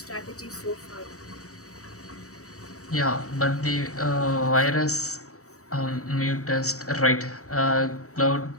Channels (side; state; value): right; late; 0.65 ms